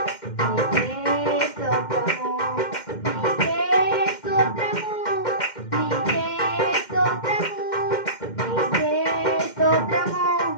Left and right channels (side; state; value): right; late; 2.1 ms